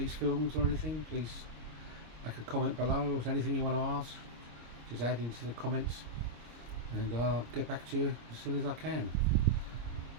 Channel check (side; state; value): left; late; 26 ms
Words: films or anything, please make a comment below. Or if there's anything you want to ask, just add into the comments and I'll get back to you as soon as I can.